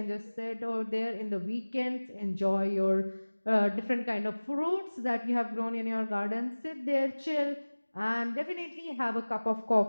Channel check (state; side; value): inverted; both; correlation -1.00